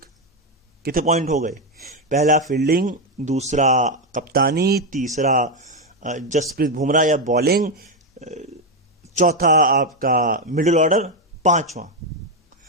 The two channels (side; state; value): both; normal; correlation 0.06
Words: कितने पॉइंट हो गए? पहला फील्डिंग, दूसरा कप्तानी, तीसरा जसप्रीत बुमराह या बॉलिंग, चौथा आपका मिडिल ऑर्डर,